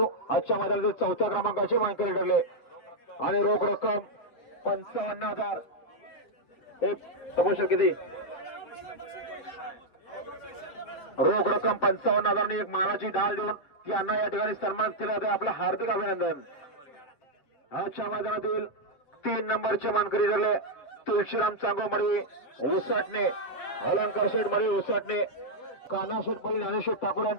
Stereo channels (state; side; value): late; right; 8.3 ms